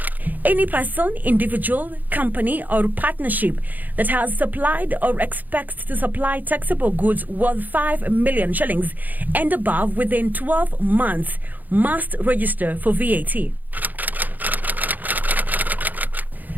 Any person, individual, company or partnership that has supplied or expects to supply taxable goods worth 5 million shillings and above within 12 months must register for VAT.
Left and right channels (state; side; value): late; left; 0.083 ms